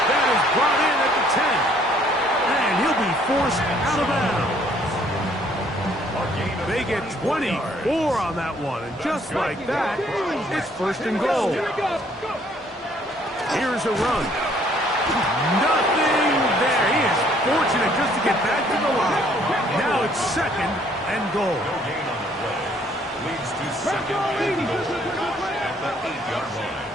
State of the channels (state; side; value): normal; both; correlation 0.63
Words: That is brought in at the 10. And he'll be forced out of bounds. They get 24 on that one. And just like that, it's first and goal. Here's a run. Nothing there. He is fortunate just to get back to the line. Now it's second and goal. No gain on the play. Leads to second and goal at the 8-yard